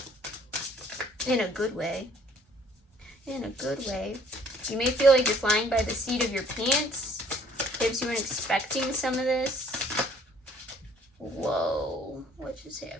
In a good way. In a good way. You may feel like you're flying by the seat of your pants. Perhaps you weren't expecting some of this. Whoa. What just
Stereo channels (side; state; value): both; normal; correlation 0.58